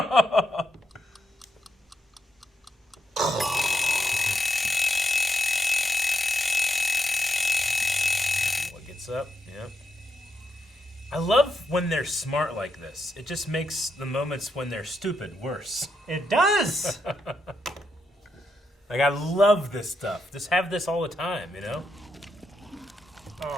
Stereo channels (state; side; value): normal; both; correlation 0.82